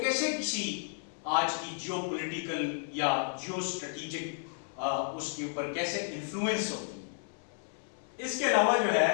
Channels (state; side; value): silent; right; 56 dB below the other